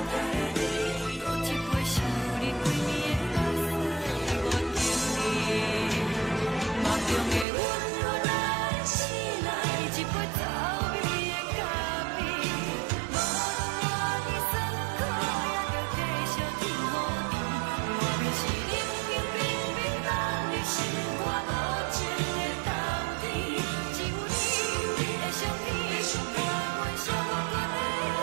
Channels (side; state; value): left; drops out; at 7.5 s